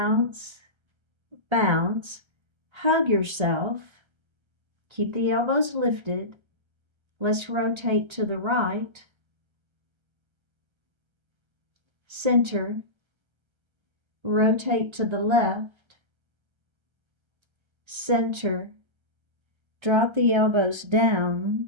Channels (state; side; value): late; left; 1.3 ms